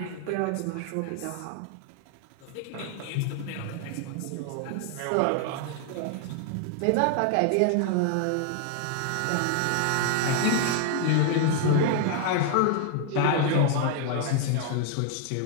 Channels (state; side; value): different; both; correlation 0.00